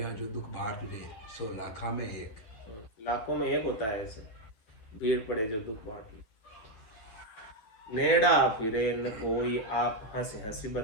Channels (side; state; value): right; late; 9.6 ms